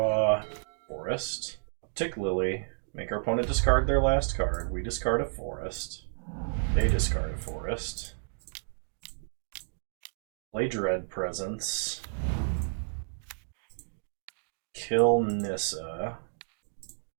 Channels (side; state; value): left; silent; digital silence